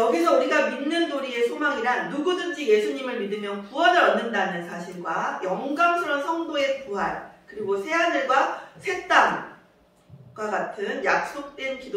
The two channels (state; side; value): identical; both; correlation 1.00